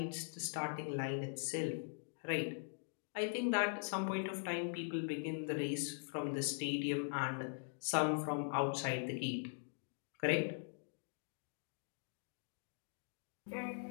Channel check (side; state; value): right; silent; digital silence